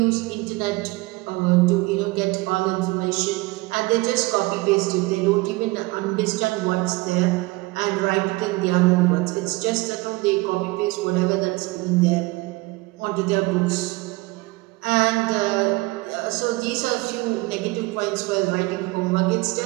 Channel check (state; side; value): quieter; left; 22.7 dB